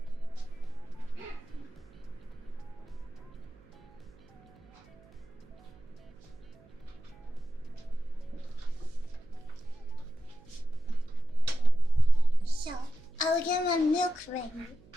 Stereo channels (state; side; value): noise; right; hum, 26 dB below the sound